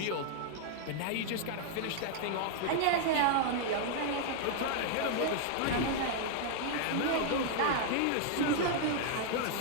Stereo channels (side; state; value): both; different; correlation -0.01